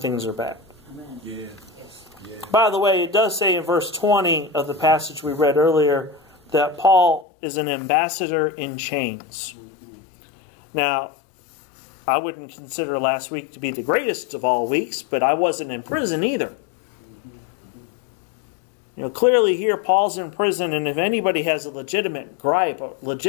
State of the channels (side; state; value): right; drops out; at 7.2 s